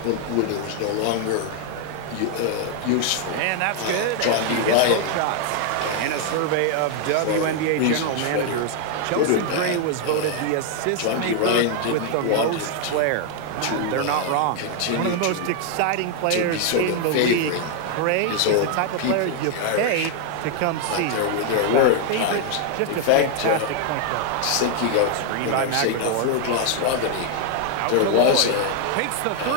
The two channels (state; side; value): different; both; correlation 0.00